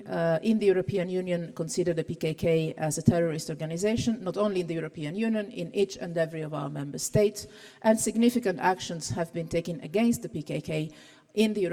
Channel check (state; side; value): identical; both; correlation 1.00